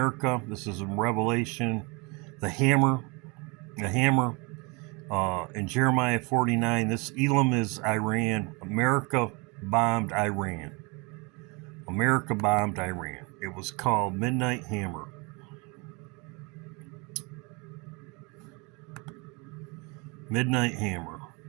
This is in Revelation. The hammer. In Jeremiah 49. This Elam is Iran. America bombed Iran. America bombed Iran. It was called Midnight Hammer. Midnight Hammer.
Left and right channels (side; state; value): left; quieter; 29.3 dB